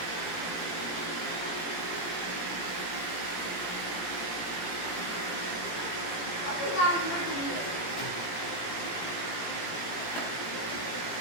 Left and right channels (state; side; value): late; right; 17 ms